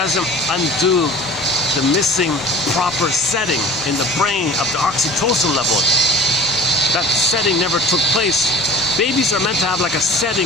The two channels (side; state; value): right; noise; rumble, 22 dB below the sound